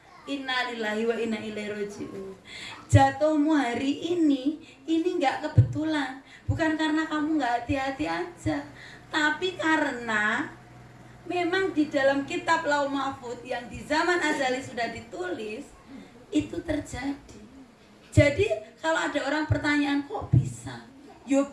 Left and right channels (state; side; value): identical; both; correlation 1.00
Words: innalillahi wa inna ilaihi raji'un. Jatuhmu hari ini nggak kebetulan. Bukan karena kamu nggak hati-hati aja, tapi karena memang di dalam kitab Lauh Mahfuz yang di zaman azali sudah ditulis, itu terjadi. Jadi kalau ada orang pertanyaan kok bisa? Yo